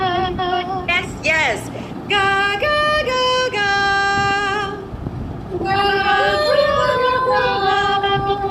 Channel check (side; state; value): both; identical; correlation 1.00